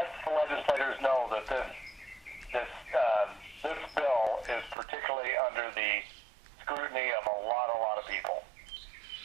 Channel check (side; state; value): left; drops out; at 4.8 s